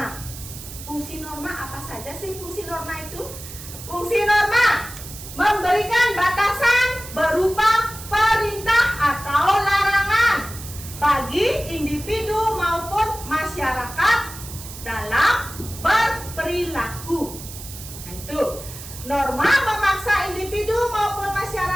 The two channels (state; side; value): noise; right; hiss, 13 dB below the sound